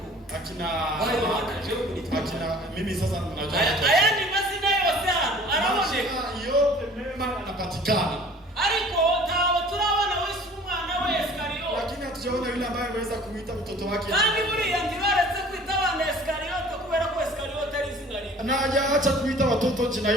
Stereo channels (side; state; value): both; normal; correlation 0.48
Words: akina mimi sasa najua. Haya ni mazina yote hano. Araoneka yote mema anapatikana. Ariko tawo turabona Yesu umwana wa Iskariote. Lakini hatujaona yule ambaye ameweza kuita mtoto wake. Kandi buriya ntibaretse kwita abana Iskariote kubera ko Iskariote ari izina ribi. Na hajaacha kuita watoto jina